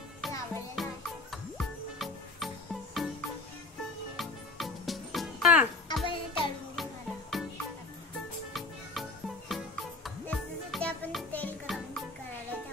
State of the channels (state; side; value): quieter; right; 3.4 dB